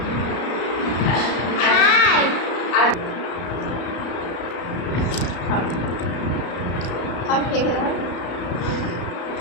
হাই আর খাও খেয়ে দাও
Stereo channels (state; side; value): late; right; 33 ms